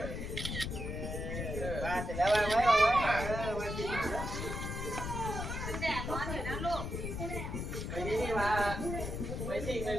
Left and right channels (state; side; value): noise; left; rumble, 4 dB below the sound